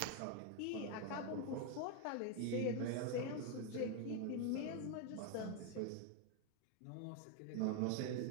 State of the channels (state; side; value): different; both; correlation 0.01